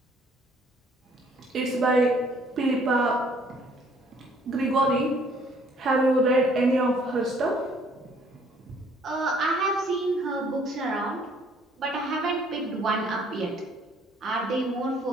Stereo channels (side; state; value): both; normal; correlation 0.60